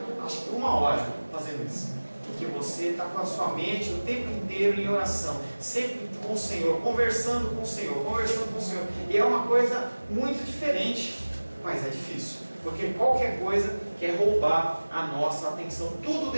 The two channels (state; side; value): inverted; both; correlation -1.00